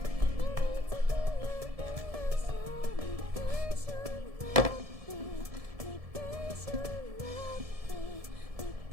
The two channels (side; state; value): left; late; 1.7 ms